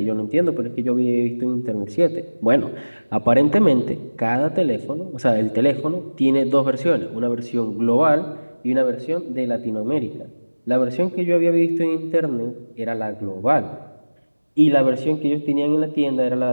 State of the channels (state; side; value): inverted; both; correlation -1.00